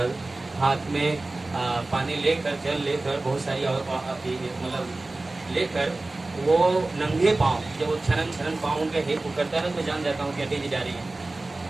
हाथ में पानी लेकर, जल लेकर, बहुत सारी मतलब लेकर, वो नंगे पाँव, जब वो छनन पाँव उनके हिप करता है ना, तो मैं जान जाता हूँ कि अटी जी जा रही है।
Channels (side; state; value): left; quieter; 3.0 dB